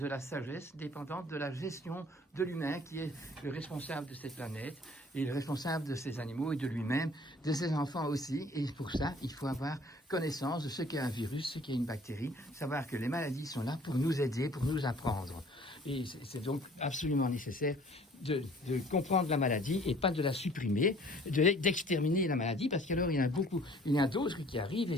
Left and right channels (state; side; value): normal; both; correlation 0.53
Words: la sagesse, dépendante de la gestion de l'humain qui est le responsable de cette planète et le responsable de ces animaux et de lui-même, de ses enfants aussi. Et pour ça, il faut avoir connaissance de ce qu'est un virus, ce qu'est une bactérie, savoir que les maladies sont là pour nous aider, pour nous apprendre. Et c'est donc absolument nécessaire de comprendre la maladie et pas de la supprimer, d'exterminer la maladie, parce qu'alors il y a d'autres qui arrivent, et